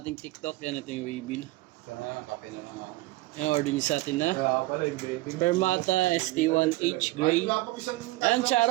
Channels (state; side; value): quieter; left; 19.6 dB